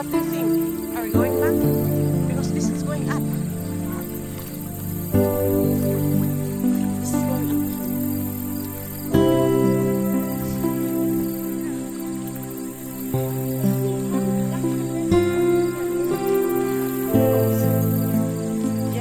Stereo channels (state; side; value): identical; both; correlation 1.00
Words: do you think? Are we going back? Because this is going up. This is going up.